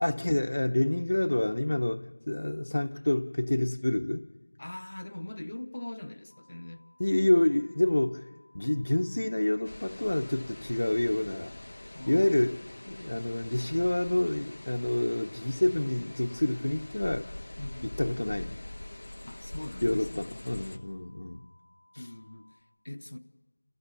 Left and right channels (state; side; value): inverted; both; correlation -1.00